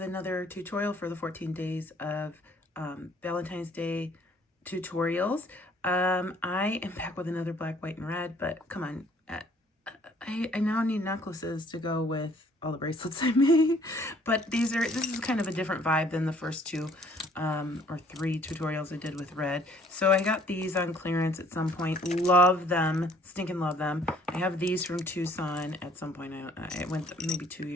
another tutorial for the 14 days of Valentine's Day tutorials. I am back with another black, white, and red, but come on, I now need necklaces to go with all the bracelets I made, but this is kind of a different vibe than the first two or three tutorials I did with red. So I got these on clearance at some point. Love them, stinking love them. I have these from Tucson at some point. I went maybe 2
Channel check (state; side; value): normal; both; correlation 0.60